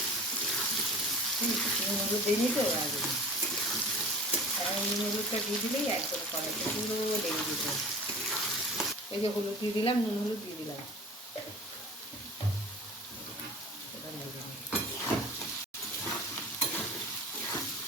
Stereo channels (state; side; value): normal; both; correlation 0.40